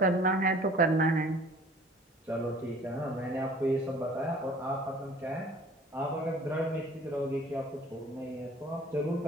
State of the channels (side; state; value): both; normal; correlation 0.50